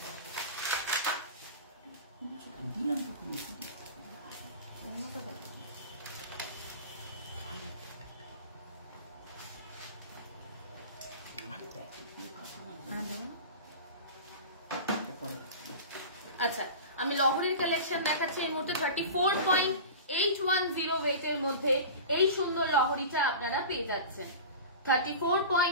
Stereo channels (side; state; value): both; inverted; correlation -0.32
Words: আচ্ছা, আমি লহরির কালেকশন দেখাচ্ছি এই মুহূর্তে। 34.810 ওয়েটের মধ্যে এই সুন্দর লহরিটা আপনারা পেয়ে যাচ্ছেন।